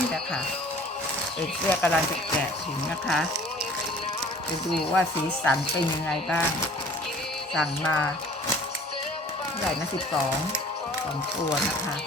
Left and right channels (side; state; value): both; normal; correlation 0.49